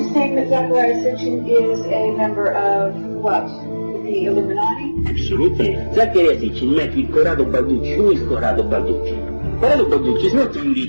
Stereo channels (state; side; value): inverted; both; correlation -1.00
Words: saying that Zachariah Sitchin is a member of what? The Illuminati? Absolutely. Zachariah Sitchin met with Corrado Balducci. Who is Corrado Balducci? Corrado Balducci is not only